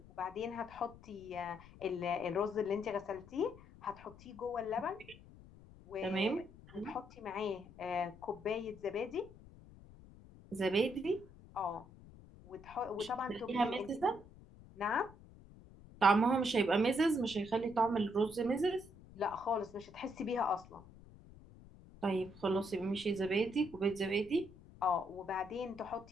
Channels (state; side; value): noise; left; rumble, 20 dB below the sound